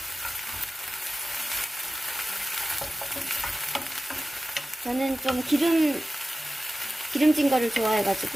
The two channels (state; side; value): normal; both; correlation 0.95